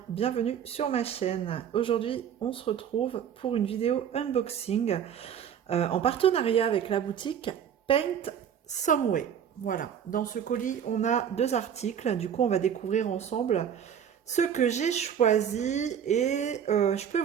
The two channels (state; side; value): quieter; left; 8.6 dB